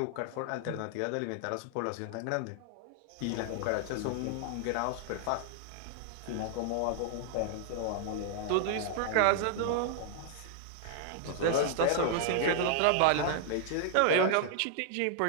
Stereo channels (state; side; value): different; both; correlation 0.00